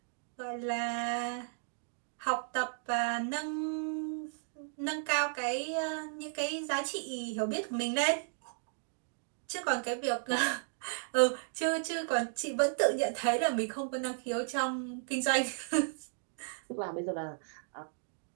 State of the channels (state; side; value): silent; left; digital silence